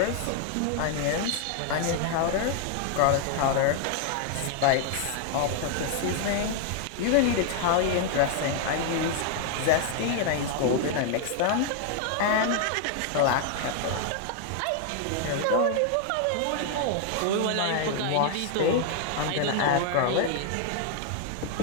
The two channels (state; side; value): different; both; correlation 0.00